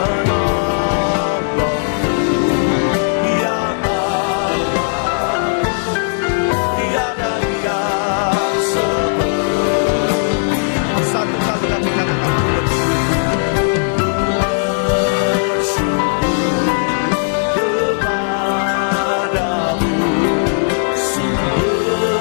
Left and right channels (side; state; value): right; silent; digital silence